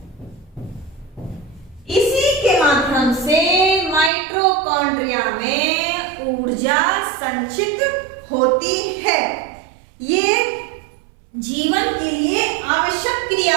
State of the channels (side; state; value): left; drops out; at 4.1 s